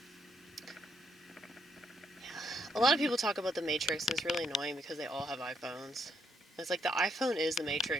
A lot of people talk about the Matrix, and it's really annoying because they all have iPhones. It's like the iPhone is the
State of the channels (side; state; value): both; normal; correlation 0.73